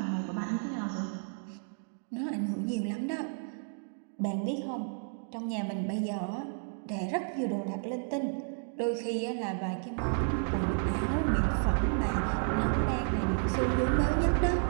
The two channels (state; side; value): silent; left; 57 dB below the other